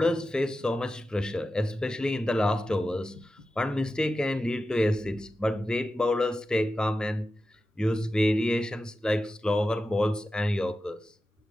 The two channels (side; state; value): both; normal; correlation 0.92